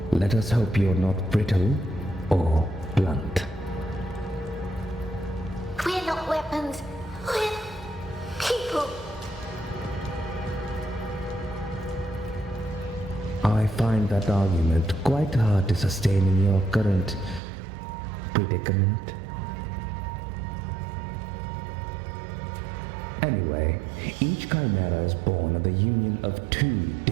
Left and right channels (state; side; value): drops out; left; at 17.4 s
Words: Let us hope you're not brittle or blunt. We're not weapons. We're people. I find that argument quite hard to sustain in your current predicament. Anyway, each Chimera is born of the union of two